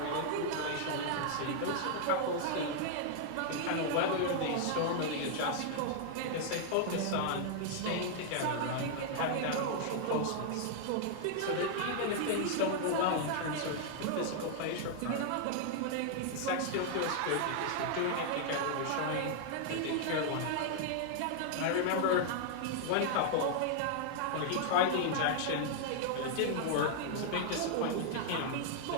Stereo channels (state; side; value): different; both; correlation -0.01